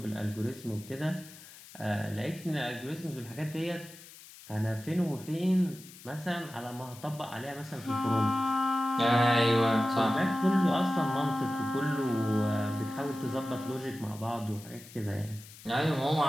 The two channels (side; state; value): left; noise; hiss, 19 dB below the sound